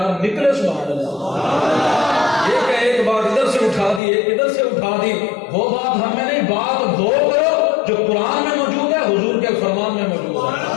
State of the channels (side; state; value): right; drops out; at 4.0 s